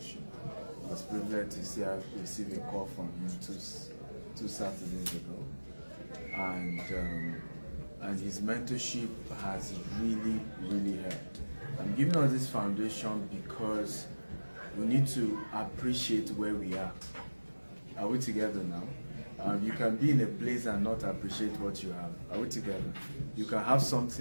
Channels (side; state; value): both; inverted; correlation -1.00